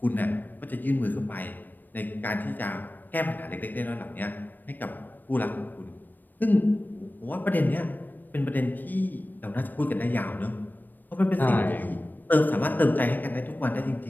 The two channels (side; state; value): right; late; 0.090 ms